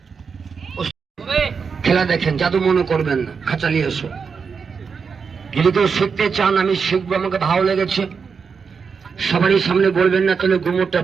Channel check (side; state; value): left; quieter; 5.7 dB